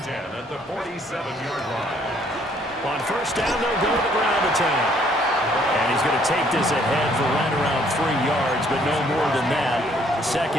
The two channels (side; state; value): both; normal; correlation 0.64